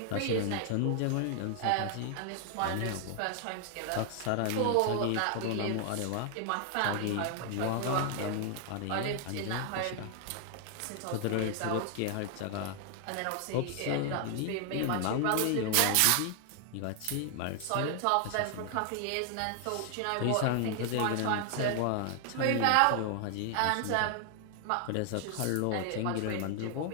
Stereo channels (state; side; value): different; both; correlation 0.00